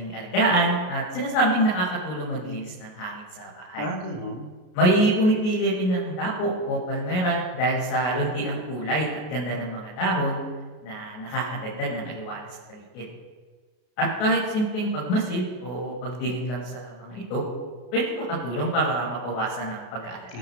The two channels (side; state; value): right; late; 33 ms